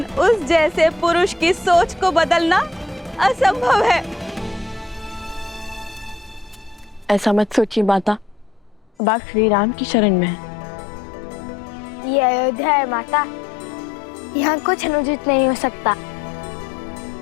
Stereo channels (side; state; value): right; drops out; at 8.9 s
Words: उस जैसे पुरुष की सोच को बदलना असंभव है। ऐसा मत सोचिए माता, अब आप श्री राम की शरण में हैं। ये अयोध्या है माता, यहाँ कुछ अनुचित नहीं हो सकता।